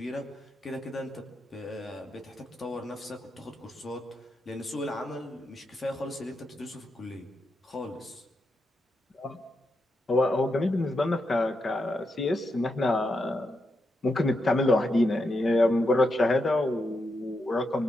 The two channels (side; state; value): both; normal; correlation 0.84